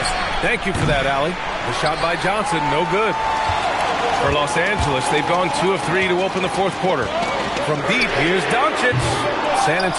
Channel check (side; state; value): both; identical; correlation 1.00